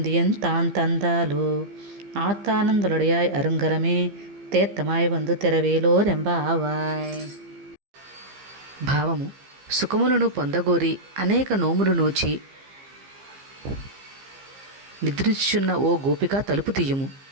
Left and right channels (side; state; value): left; late; 15 ms